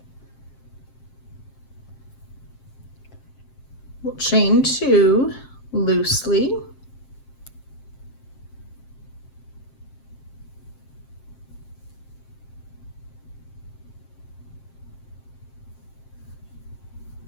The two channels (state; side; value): late; right; 7.6 ms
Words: We'll chain 2 loosely.